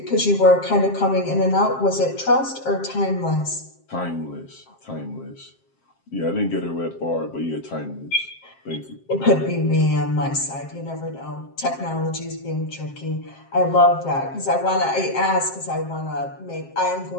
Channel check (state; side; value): late; right; 7.5 ms